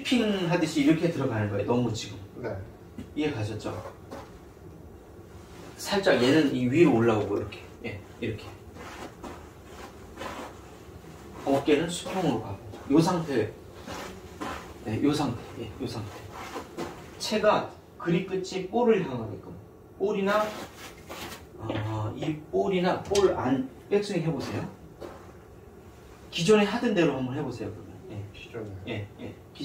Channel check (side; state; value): both; identical; correlation 1.00